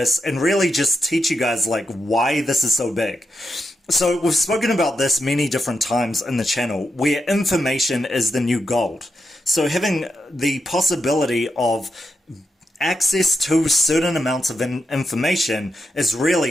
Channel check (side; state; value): both; normal; correlation 0.85